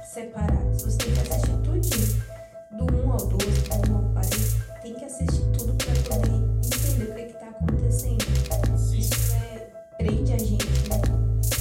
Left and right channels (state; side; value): identical; both; correlation 1.00